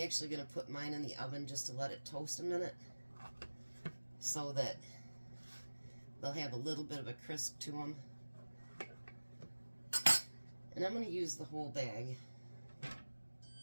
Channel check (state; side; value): inverted; both; correlation -1.00